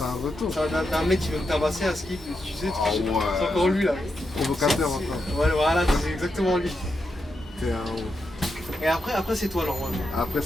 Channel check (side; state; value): both; normal; correlation 0.85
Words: retour. d'un mec qui veut me tabasser à ski, tu sais, Ah ouais. c'est encore lui là. Provocateur encore. Ouais, voilà, c'est exactement lui. T'es un ouf. Et après c'est toi normalement. Après,